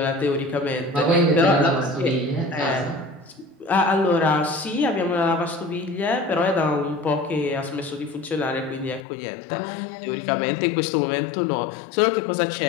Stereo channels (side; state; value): right; drops out; at 9.0 s